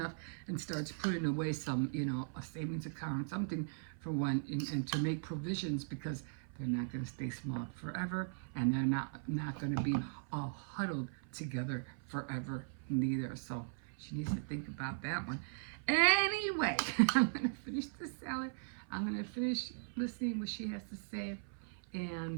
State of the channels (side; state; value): left; silent; 52 dB below the other